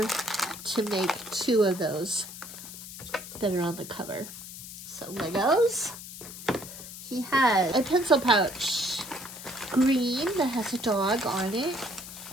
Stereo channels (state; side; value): noise; left; hiss, 12 dB below the sound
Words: to make 2 of those that are on the cover. So Legos. He has a pencil pouch, green, that has a dog on it,